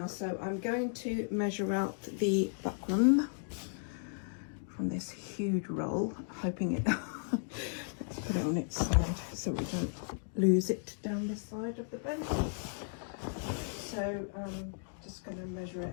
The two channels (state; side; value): silent; right; digital silence